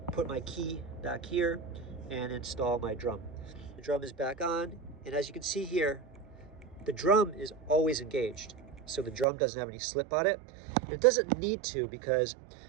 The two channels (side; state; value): left; drops out; at 9.2 s